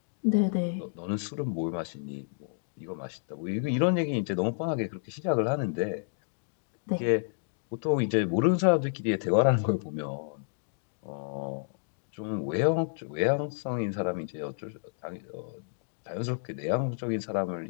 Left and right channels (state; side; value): silent; right; digital silence